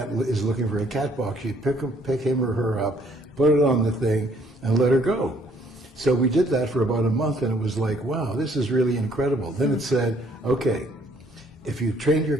is looking for a cat box, you pick him or her up, put it on the thing, and let her go. So we did that for about a month, and it was like, wow, this is really incredible. Then it said, okay, if you've trained your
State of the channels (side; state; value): both; normal; correlation 0.64